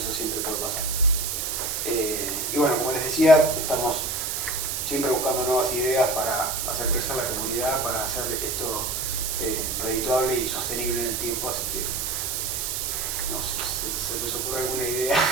siempre puede pasar. Y bueno, como les decía, estamos siempre buscando nuevas ideas para hacer crecer la comunidad, para hacer esto redituable y sostenible en el tiempo, así que si se les ocurre alguna idea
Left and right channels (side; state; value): right; noise; hiss, 2 dB below the sound